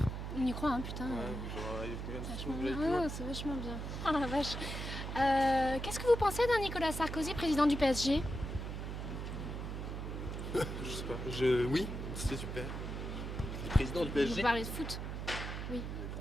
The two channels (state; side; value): noise; right; hum, 5 dB below the sound